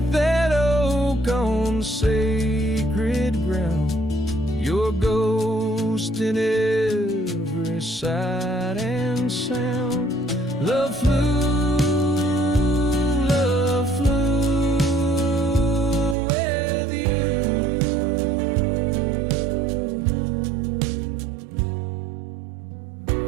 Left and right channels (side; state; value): left; drops out; at 16.2 s